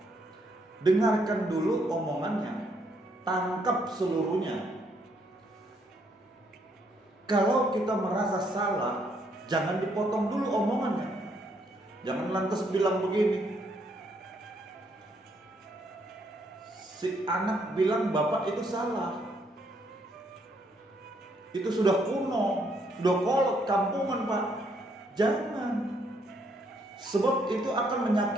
dengarkan dulu omongannya, tangkap seluruhnya. Kalau kita merasa salah, jangan dipotong dulu omongannya. Jangan lantas bilang begini, si anak bilang bapak itu salah. Itu sudah kuno, sudah kolot, kampungan pak. Jangan. Sebab itu akan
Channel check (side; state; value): both; normal; correlation 0.71